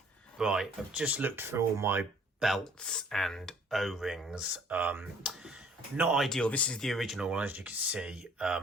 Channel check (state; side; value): normal; both; correlation 0.57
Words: Right, I've just looked through all my belts and O-rings. Not ideal. This is the original one, as you can see.